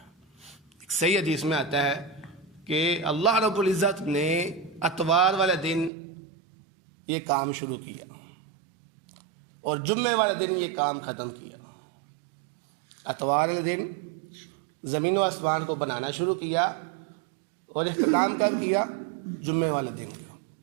ایک صحیح حدیث میں آتا ہے کہ اللہ رب العزت نے اتوار والے دن یہ کام شروع کیا اور جمعے والے دن یہ کام ختم کیا۔ اتوار والے دن زمین و آسمان کو بنانا شروع کیا اور اختتام کب کیا؟ جمعے والے دن کا۔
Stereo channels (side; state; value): left; drops out; at 5.9 s